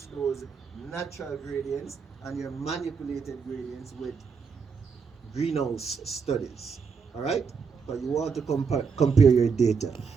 those natural gradients and your manipulated gradients with greenhouse studies, all right? But you want to compare your data.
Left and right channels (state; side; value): quieter; left; 5.7 dB